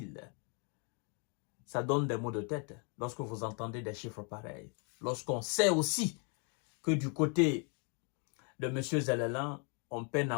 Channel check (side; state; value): right; quieter; 38.1 dB